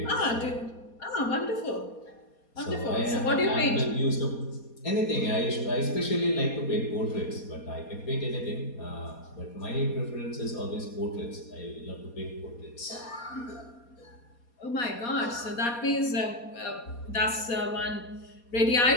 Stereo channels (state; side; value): late; right; 4.2 ms